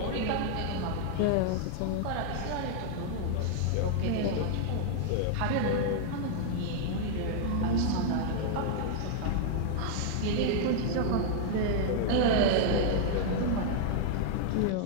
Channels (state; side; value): different; both; correlation -0.01